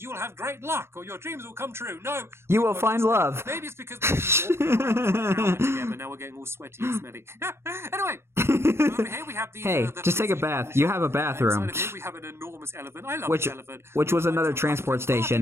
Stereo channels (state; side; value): late; left; 0.12 ms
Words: you will have great luck or your dreams will come true. No. You will find love. Maybe it's because we're together. Now we're getting all sweaty and smelly. Anyway, over here we have the... Hey, just take a bath. You have a bathroom. Inside of here we have an enormous elephant. I love this elephant. Which was another transport